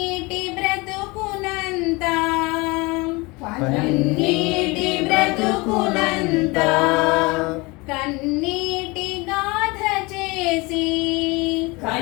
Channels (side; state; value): right; quieter; 25.0 dB